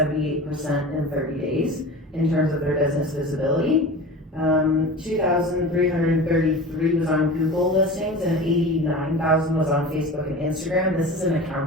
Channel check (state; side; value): normal; both; correlation 0.34